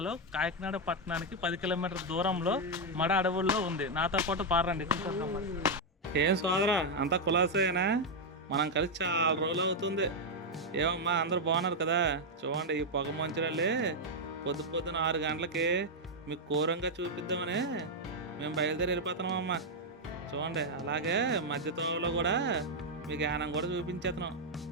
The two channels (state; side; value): normal; both; correlation 0.00